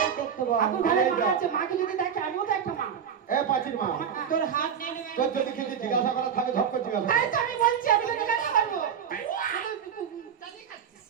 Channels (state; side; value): quieter; left; 7.8 dB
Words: দেখতে বল আপু ঘরে মা আছে, মাকে যদি দেখে আমিও তো একটা মা। এ পাচির মা তোর হাত নিয়ে নেবে তোর যদি কিছু জিজ্ঞাসা করা থাকে ঝপ করে জিজ্ঞাসা তাই কর। তো আমি বলছি, আমি তো জিজ্ঞাসা করবো।